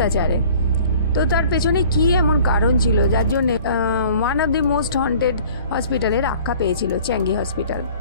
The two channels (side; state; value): both; inverted; correlation -0.49